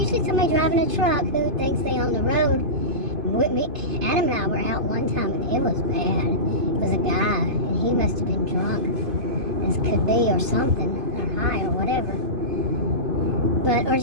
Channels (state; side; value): late; left; 2.5 ms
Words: somebody driving a truck who thinks they own the road. With me, Adam and I were out one time, and it was bad. It was a guy, and he must have been drunk, as could be, or something, or high, or whatever. But, or